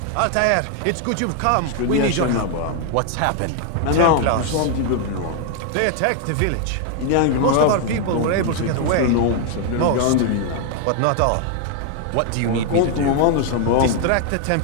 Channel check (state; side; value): different; both; correlation 0.00